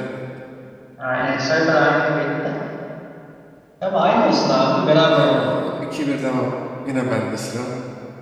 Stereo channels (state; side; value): identical; both; correlation 1.00